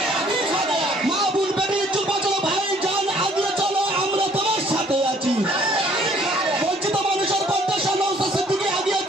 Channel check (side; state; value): both; normal; correlation 0.60